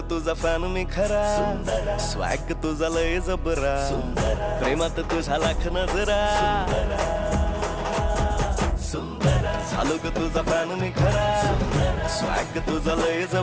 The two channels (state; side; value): identical; both; correlation 1.00